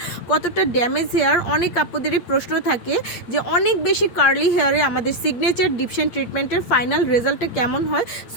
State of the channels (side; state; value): right; late; 8.7 ms